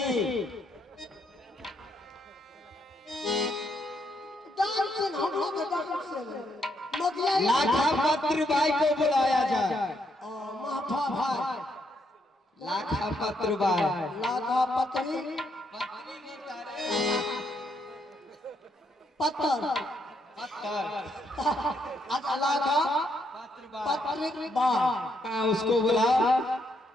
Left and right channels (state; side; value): normal; both; correlation 0.76